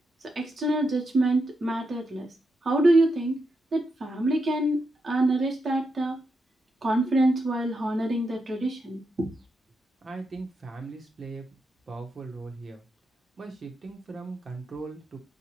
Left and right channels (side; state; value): both; normal; correlation 0.84